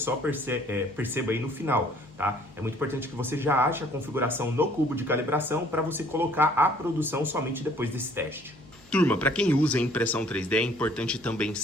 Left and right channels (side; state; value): left; noise; hum, 26 dB below the sound